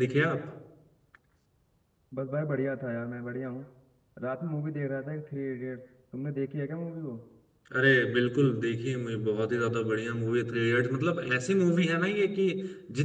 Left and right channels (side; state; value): both; identical; correlation 1.00